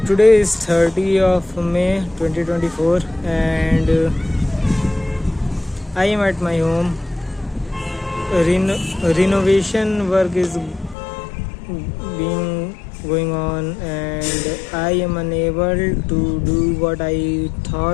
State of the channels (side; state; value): right; drops out; at 11.0 s